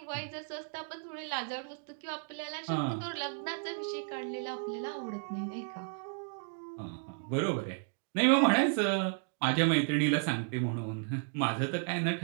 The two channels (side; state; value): left; silent; 55 dB below the other